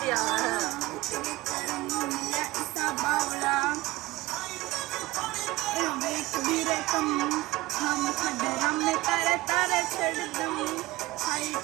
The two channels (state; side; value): quieter; left; 18.8 dB